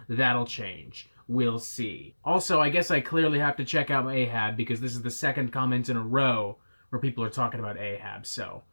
that'll change. We'll see. Also, I guess I clearly have to check out Ahab because this is the second comment in a row where people are talking about Ahab. So,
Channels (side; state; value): both; inverted; correlation -1.00